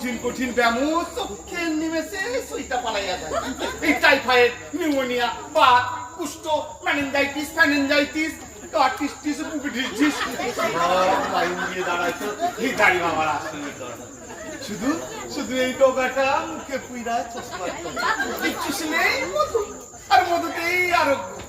কঠিন ব্যামো চোখের নিমেষে সুইটা পালাইয়া যায় এই টাইফয়েড নিউমোনিয়া বাত কুষ্ঠ মেনিনজাইটিস ফ্যানিনজাইটিস কার্টিস্টিস বুবিডিটিস লাইন দিয়ে দাঁড়াইতো এই দাড়ি বাবার আসলে শুধু শুধু এই টোকাটা মুখে পুইরা চশমা চুষিলেই মধু আর মধুতেই আরোগ্য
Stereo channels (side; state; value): both; identical; correlation 1.00